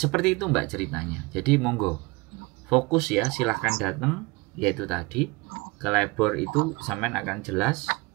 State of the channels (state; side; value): quieter; left; 24.8 dB